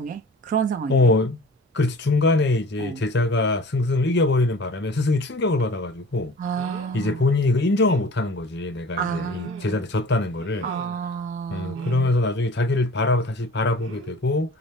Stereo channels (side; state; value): both; normal; correlation 0.44